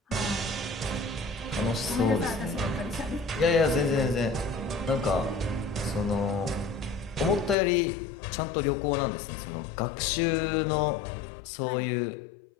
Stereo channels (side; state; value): right; drops out; at 7.6 s